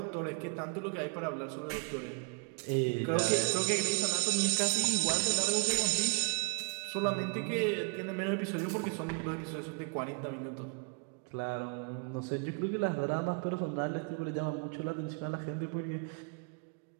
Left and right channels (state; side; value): quieter; left; 38.1 dB